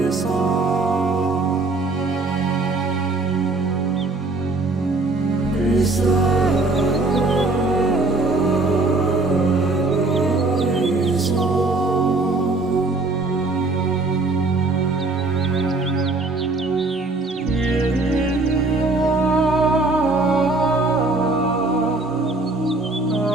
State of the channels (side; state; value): left; quieter; 3.3 dB